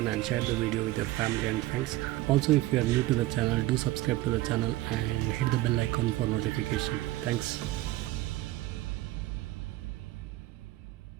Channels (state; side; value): quieter; left; 16.9 dB